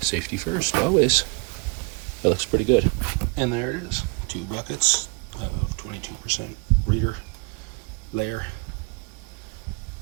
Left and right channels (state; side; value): quieter; left; 32.2 dB